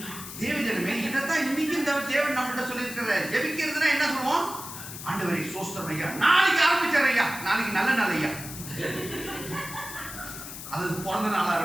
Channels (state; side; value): noise; left; hiss, 10 dB below the sound